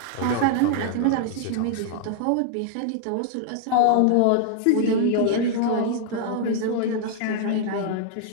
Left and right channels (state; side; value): different; both; correlation -0.01